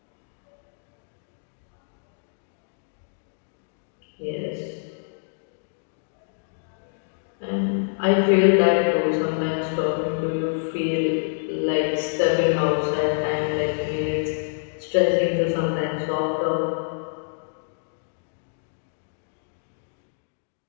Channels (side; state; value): right; silent; digital silence